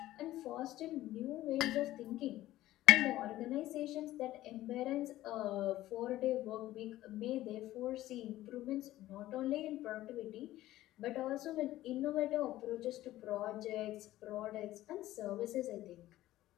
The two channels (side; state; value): right; quieter; 15.2 dB